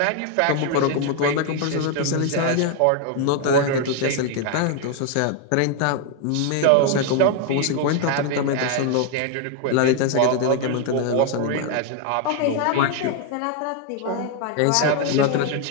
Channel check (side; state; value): both; different; correlation 0.01